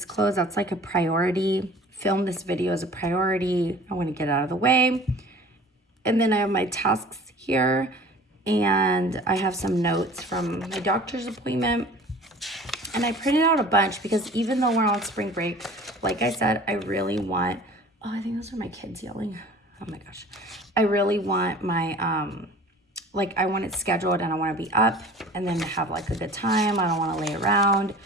clothes. That's like a priority. Film this video as a priority. I want to get out of the way. And then I have my tasks here. And I have some notes from my doctor's appointment. And I printed out a bunch because even though we're on spring break, like I said, I really want... Oh, I think those are my kids yelling. Oh my gosh. I really want my... like I want it scheduled and I want to be up and then have like a good time. I don't want to lay around.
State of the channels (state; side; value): normal; both; correlation 0.45